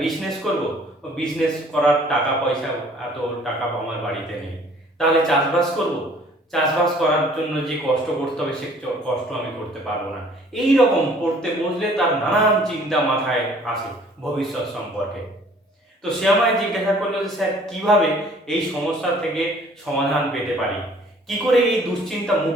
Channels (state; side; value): normal; both; correlation 0.55